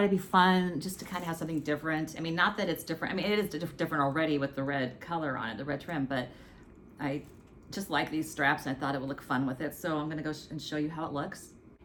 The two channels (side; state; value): both; identical; correlation 1.00